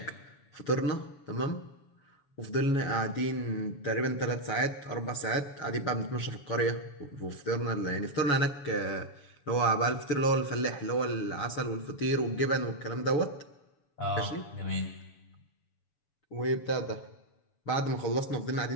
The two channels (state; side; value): late; right; 7.1 ms